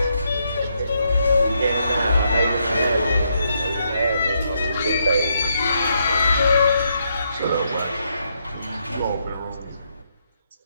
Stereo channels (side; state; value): both; inverted; correlation -0.77